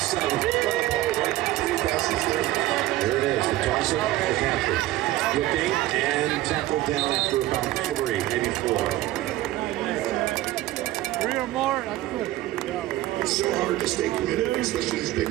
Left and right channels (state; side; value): quieter; left; 16.0 dB